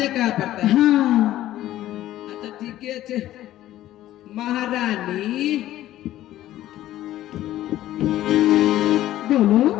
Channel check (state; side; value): quieter; right; 13.9 dB